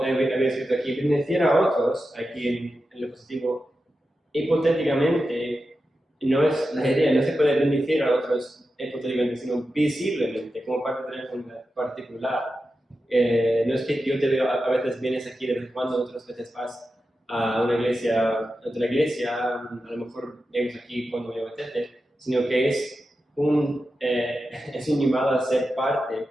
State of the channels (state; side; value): normal; both; correlation 0.91